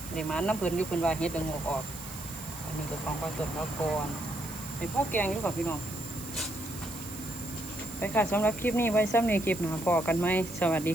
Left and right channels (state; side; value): noise; right; hiss, 12 dB below the sound